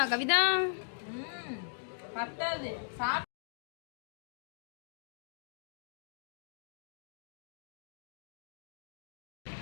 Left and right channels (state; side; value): silent; right; digital silence